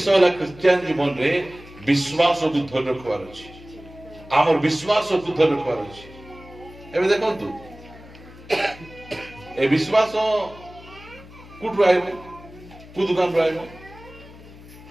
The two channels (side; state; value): left; noise; hum, 19 dB below the sound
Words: ला क्रिश्चियन जीवन रे विश्वास को धर रखवार अछि हमर विश्वास को धर रखवार अछि एबे देखंतु ए विश्वास कुठ आइबो कु दुकान रे आइबो